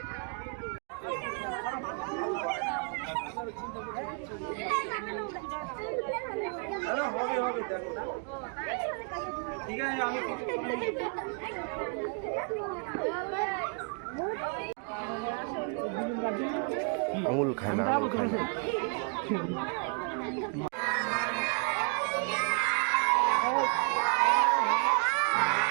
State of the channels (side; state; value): left; quieter; 39.5 dB